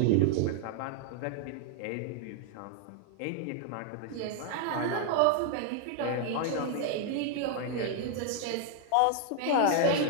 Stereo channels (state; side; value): different; both; correlation 0.00